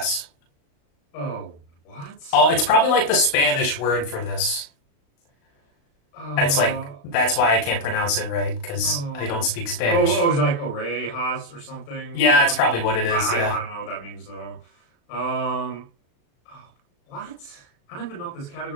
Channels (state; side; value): late; right; 35 ms